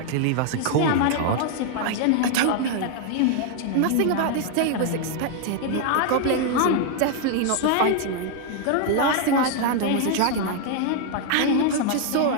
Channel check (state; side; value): different; both; correlation 0.00